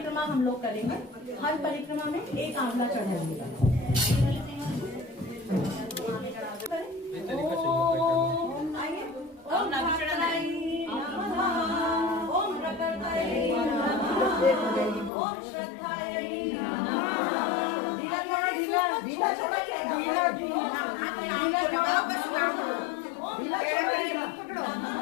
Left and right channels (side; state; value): right; drops out; at 15.1 s